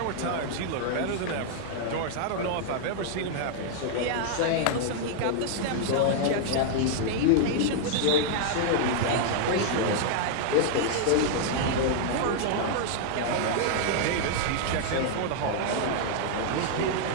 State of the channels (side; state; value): both; different; correlation -0.01